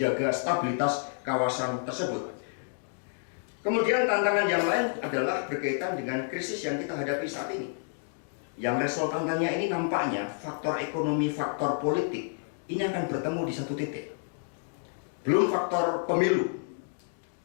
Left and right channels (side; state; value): right; silent; digital silence